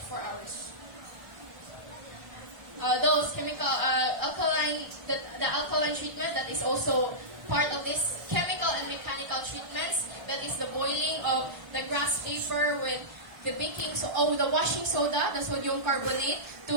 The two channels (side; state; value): left; late; 1.3 ms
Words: hours. Those chemical the alkaline treatment that is also part of this chemical and mechanical treatments, that is the boiling of the grass paper with the the washing soda, the sodium carbonate,